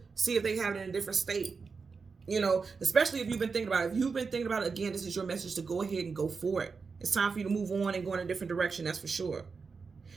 see if they have it in a different state. Especially if you've been thinking about it. If you've been thinking about it, again, this is your message to go ahead and go for it. It's time for you to move on and go in a different direction, that's for sure.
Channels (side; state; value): left; quieter; 5.0 dB